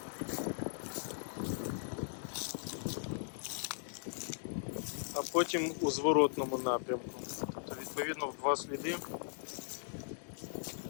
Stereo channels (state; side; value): silent; right; digital silence